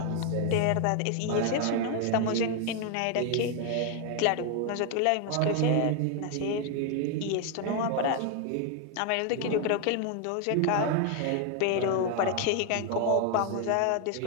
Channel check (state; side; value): different; both; correlation 0.01